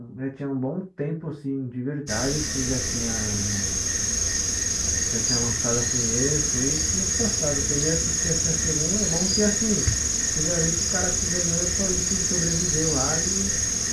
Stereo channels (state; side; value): identical; both; correlation 1.00